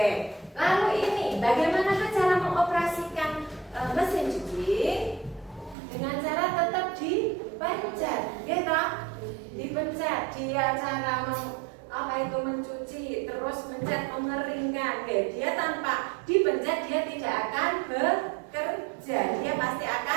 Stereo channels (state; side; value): drops out; left; at 5.8 s